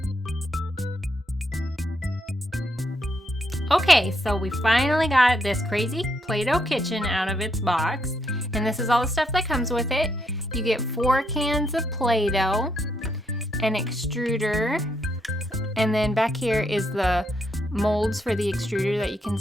Okay, so we finally got this crazy Play-Doh kitchen out of its box, and this is all the stuff that comes with it. You get 4 cans of Play-Doh, an extruder, and then back here is the molds for the extruder that you can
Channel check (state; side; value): normal; both; correlation 0.77